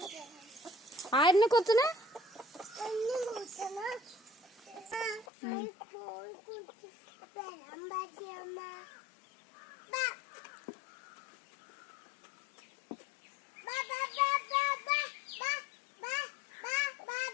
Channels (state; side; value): drops out; right; at 5.2 s